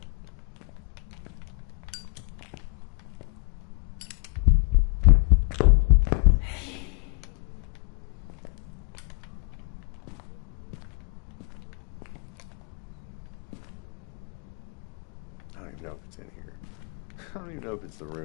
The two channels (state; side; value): quieter; right; 35.6 dB